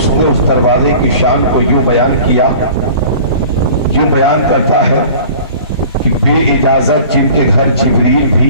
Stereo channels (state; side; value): inverted; both; correlation -0.44